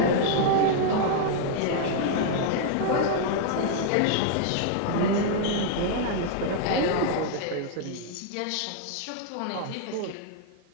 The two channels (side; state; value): both; different; correlation -0.01